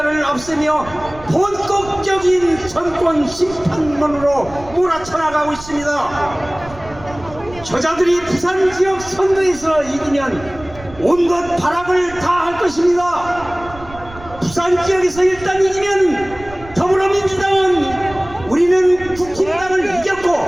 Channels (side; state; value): right; noise; rumble, 17 dB below the sound